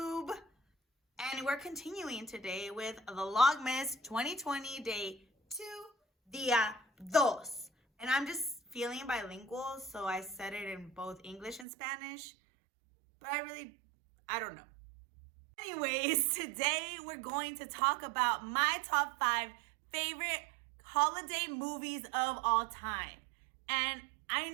And we're continuing today with Vlogmas 2020 Day 2, Día 2. And I'm just feeling bilingual, so I said it in both English and Spanish. But I don't know. Anyways, today we're going to talk about my top 5 favorite holiday movies of all time. And I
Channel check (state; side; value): drops out; left; at 11.7 s